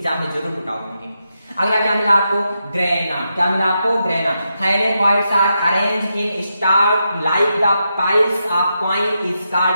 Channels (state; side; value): inverted; both; correlation -0.85